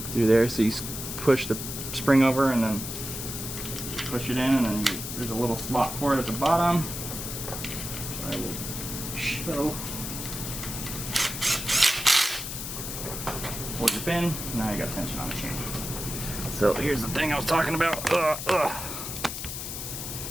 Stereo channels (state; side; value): noise; left; hiss, 6 dB below the sound